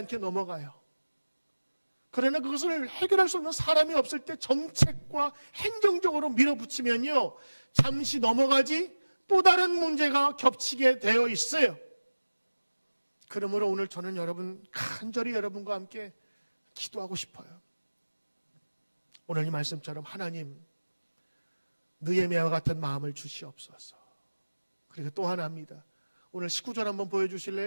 넘어가요. 그러나 그것을 해결할 수 없는 사람이 없을 때 정책과 행정적으로 밀어붙이면요, 잠시 넘어가지 또 다른 문제가 겹치게 되어 있어요. 그러므로 오늘 저는 간절히 여러분과 함께 기도하고 싶어요. 오늘 이 말씀처럼 하나님, 느헤미야와 같은 마음을 주시옵소서. 그리고 또 하나입니다. 오늘 19절 한번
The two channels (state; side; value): inverted; both; correlation -1.00